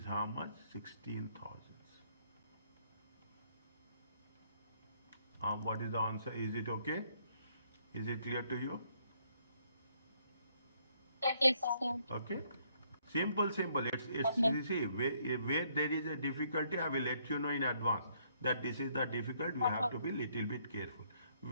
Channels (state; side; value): inverted; both; correlation -0.69